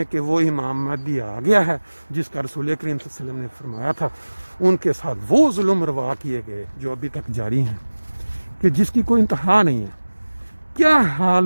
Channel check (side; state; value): both; inverted; correlation -1.00